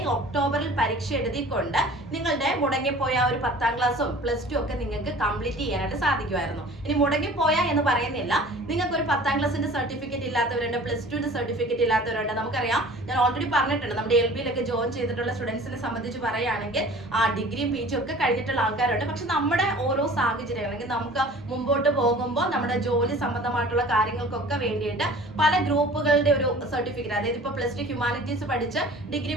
ഒക്ടോബറിൽ പരീക്ഷ എഴുതിക്കൊണ്ട് നിങ്ങളുടെ മുടങ്ങിപ്പോയ ഒരു 10ാം ക്ലാസ്സും പ്ലസ് 2 ഒക്കെ നിങ്ങൾക്ക് കംപ്ലീറ്റ് ചെയ്യാനായിട്ട് സാധിക്കുമായിരുന്നു. ഇനി മുടങ്ങിപ്പോയ എന്ന് പറയുന്നില്ല, നിങ്ങൾക്ക് ഒരു 10ാം ക്ലാസ്സിന്റെ സർട്ടിഫിക്കറ്റ് ഇല്ലാത്തവരുണ്ട്, പ്ലസ് 2ന്റെ സർട്ടിഫിക്കറ്റ് ഇല്ലാത്തവരുണ്ട്. നമുക്കറിയാം, ഞാൻ ഓൾറെഡി പറഞ്ഞിട്ടുണ്ട്, നമ്മുടെ LBയിലൊക്കെ ജോയിൻ ചെയ്തിട്ടുള്ള സ്റ്റുഡൻസിനെ സംബന്ധിച്ച് പറയുകയാണെങ്കിൽ ഡിഗ്രിയും PG ഒക്കെ കഴിഞ്ഞിട്ടുള്ള ആൾക്കാരുണ്ട്. പക്ഷെ നമ്മുടെ ഓരോ സാഹചര്യം, അല്ലെങ്കിൽ നമുക്ക് മുമ്പോട്ട് പോകുമ്പോൾ നമ്മുടെ ജോലി സംബന്ധമായിട്ടുള്ള കാര്യങ്ങൾക്കൊക്കെ വേണ്ടിയിട്ട് പല ഗ്രൂപ്പുകളുടെ ഒരു സർട്ടിഫിക്കറ്റ്, അതായത് ഇപ്പൊ പ്ലസ് 2 ഹ്യൂമാനിറ്റീസ് പഠിച്ച്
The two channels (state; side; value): normal; both; correlation 0.45